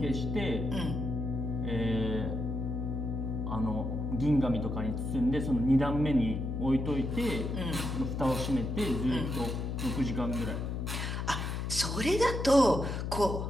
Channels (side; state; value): left; noise; hum, 3 dB below the sound